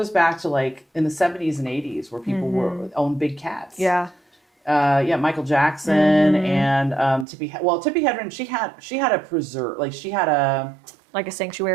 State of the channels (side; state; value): left; drops out; at 7.2 s